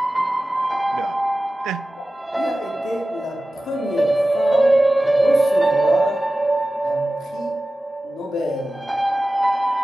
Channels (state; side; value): normal; both; correlation 0.95